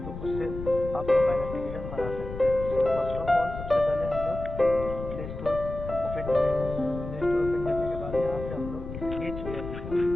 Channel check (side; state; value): left; noise; rumble, 9 dB below the sound